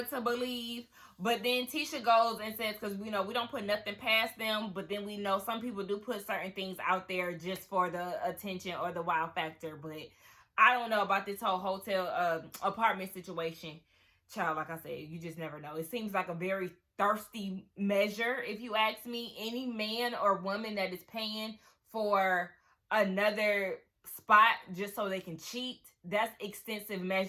to believe. But then Tisha goes and says, because we know we don't put nothing past them, but then we know some people do put certain things out there just for the attention or the wow factor. But I don't know about this whole hotel apartment situation. child, like I said, you just never know. It seems like a very thirsty measure, if you ask me. Any man or woman that is paying for another spot just so they can cheat, that's extensive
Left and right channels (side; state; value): both; identical; correlation 1.00